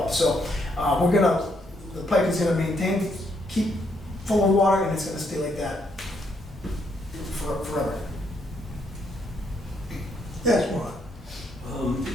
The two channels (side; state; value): both; normal; correlation 0.74